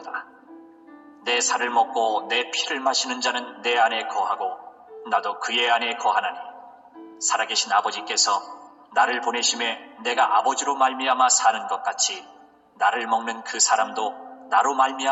내 살을 먹고 내 피를 마시는 자는 내 안에 거하고 나도 그의 안에 거하나니 살아계신 아버지께서 나를 보내심에 내가 아버지로 말미암아 사는 것 같이 나를 먹는 그 사람도 나로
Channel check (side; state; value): both; identical; correlation 1.00